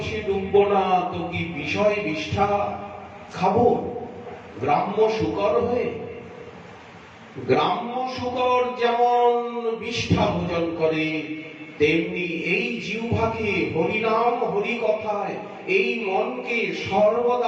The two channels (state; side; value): identical; both; correlation 1.00